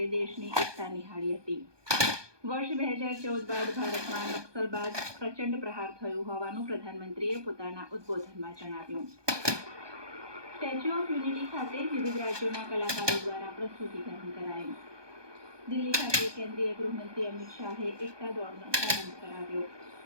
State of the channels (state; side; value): late; left; 1.2 ms